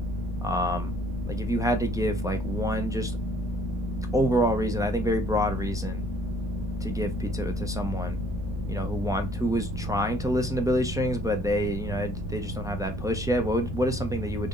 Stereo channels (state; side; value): noise; right; rumble, 9 dB below the sound